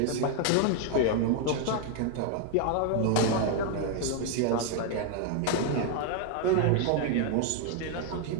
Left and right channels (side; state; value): both; different; correlation 0.00